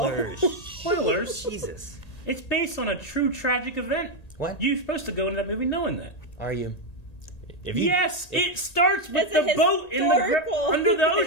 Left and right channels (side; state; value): right; late; 1.9 ms